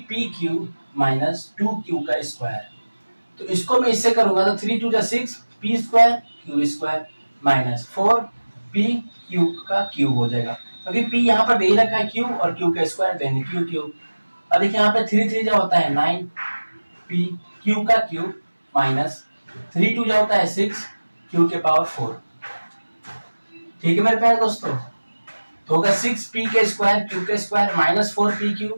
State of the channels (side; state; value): both; inverted; correlation -1.00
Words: minus 2q का स्क्वायर। तो इसको मैं इससे करूंगा तो 3 2 जा 6 p square q square minus 4 p q का क्यूब हो जाएगा, क्योंकि p यहाँ पर दे ही रखा है q और q का स्क्वायर देने q क्यूब। अब देखिए यहाँ पे 3 3 जो होता है 9 p q का क्यूब माइनस 3 2 जो होता है 6 q के पावर 4। ठीक है मेरे प्यारे दोस्तों, तो होगा 6p के स्क्वायर q के square minus 4p